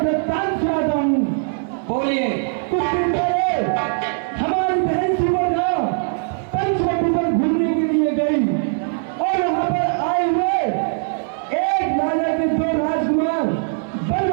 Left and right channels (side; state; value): left; silent; 62 dB below the other